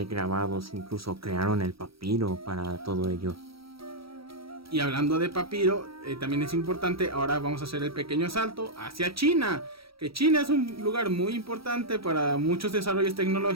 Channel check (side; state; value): left; late; 0.75 ms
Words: grabados. Incluso crearon el papiro para todo ello. Y hablando de papiro, también es importante, ahora vamos a hacer el pequeño salto hacia China. Que China es un lugar muy importante para muchos desarrollos